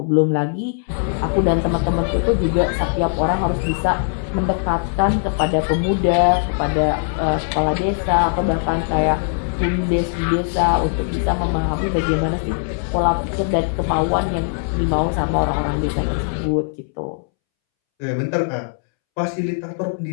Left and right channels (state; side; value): silent; right; 65 dB below the other